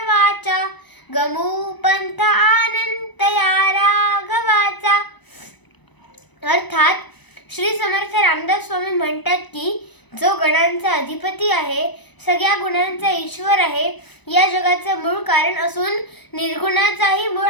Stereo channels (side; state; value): right; late; 1.0 ms